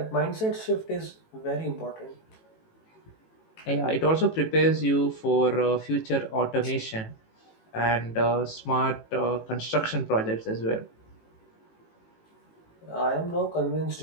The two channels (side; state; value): right; late; 18 ms